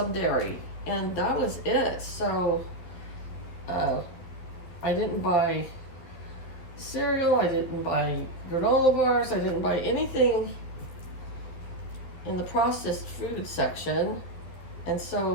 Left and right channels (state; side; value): late; right; 11 ms